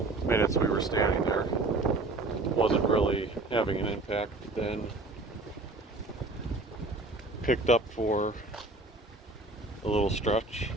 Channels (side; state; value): left; quieter; 3.1 dB